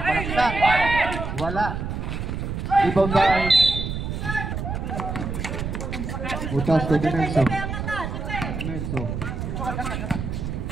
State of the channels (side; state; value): right; noise; rumble, 4 dB below the sound